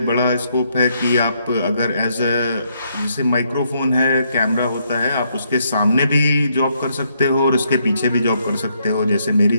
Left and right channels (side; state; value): both; inverted; correlation -0.74